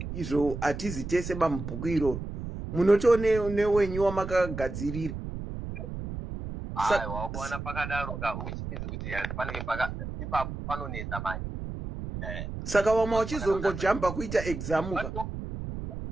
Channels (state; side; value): noise; right; rumble, 7 dB below the sound